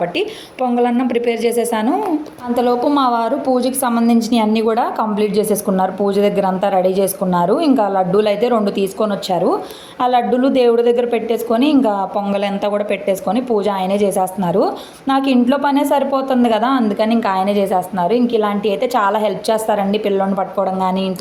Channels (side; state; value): both; identical; correlation 1.00